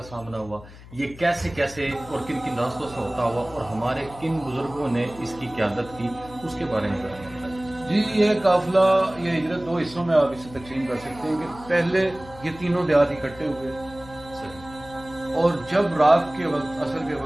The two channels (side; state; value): left; noise; hum, 18 dB below the sound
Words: سامنا ہوا، یہ کیسے کیسے اور کن کن راستوں سے ہوتا ہوا، اور ہمارے کن بزرگوں نے اس کی قیادت کی، اس کے بارے میں بتائیں. جی، یہ قافلہ، یہ ہجرت 2 حصوں میں آپ اسے تقسیم کر سکتے ہیں کہ پہلے یہ تینوں دیہات اکٹھے ہوئے، اور جب رات کے وقت، عصر کے